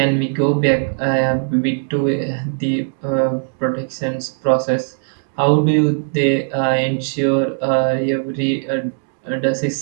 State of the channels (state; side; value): silent; left; digital silence